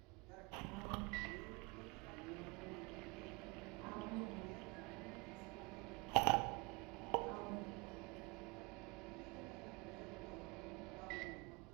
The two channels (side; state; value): left; quieter; 28.7 dB